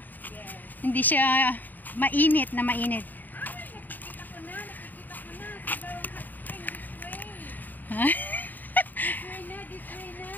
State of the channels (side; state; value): right; late; 0.087 ms